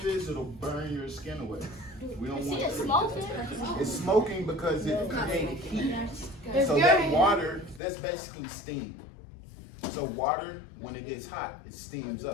this, it'll burn your skin away. We don't want It's it. smoking. It's smoking because it created heat. So that water, that's basically steam. So water, when it gets hot, it steams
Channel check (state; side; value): drops out; right; at 7.8 s